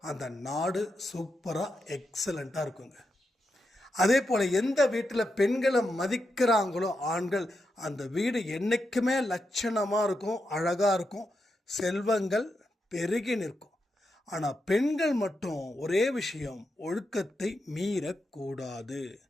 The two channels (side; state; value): both; normal; correlation 0.86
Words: அந்த நாடு சூப்பராக எக்ஸலண்ட்டாக இருக்குங்க. அதே போல் எந்த வீட்டில் பெண்களை மதிக்கிறாங்களோ ஆண்கள், அந்த வீடு என்றைக்குமே லட்சணமாக இருக்கும், அழகாக இருக்கும், செல்வங்கள் பெருகி நிற்கும். ஆனால் பெண்கள் மட்டும் ஒரே விஷயம், ஒழுக்கத்தை மீறக்கூடாது.